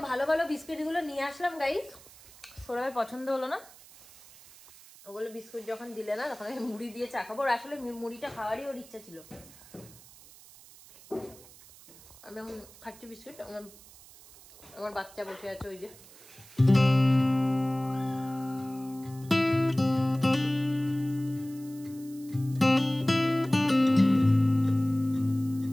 ভালো ভালো বিস্কিট গুলো নিয়ে আসলাম গাইস, সৌরভের পছন্দ হলো না। ওগুলো বিস্কুট যখন দিলে না তখন আমি মুড়ি দিয়ে চা খাবো। আসলে মুড়িটা খাওয়ারই ওর ইচ্ছা ছিল। আমি খাচ্ছি বিস্কুট, আমার বাচ্চা বসে আছে ওই যে।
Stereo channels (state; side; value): noise; right; hiss, 22 dB below the sound